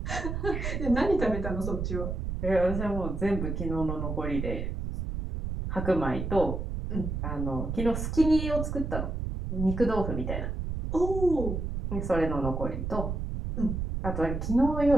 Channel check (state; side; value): noise; right; rumble, 3 dB below the sound